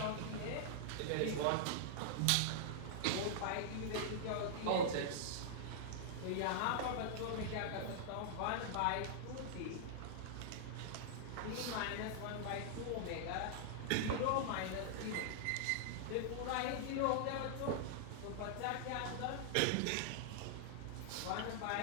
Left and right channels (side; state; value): both; different; correlation -0.01